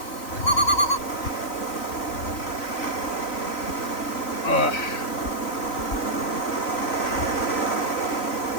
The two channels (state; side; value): late; right; 3.0 ms